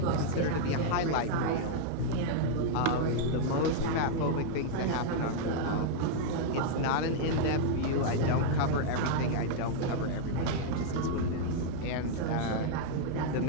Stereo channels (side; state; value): both; different; correlation -0.01